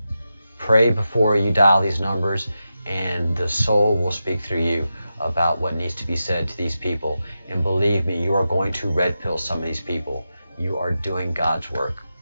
Pray before you dial these numbers, and the soul will speak through you about what needs to be said to these people. And believe me, you are going to red pill some of these people. You are doing God's work.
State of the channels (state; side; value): inverted; both; correlation -0.90